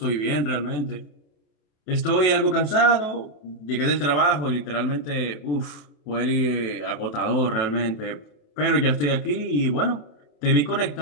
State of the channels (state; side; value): late; right; 28 ms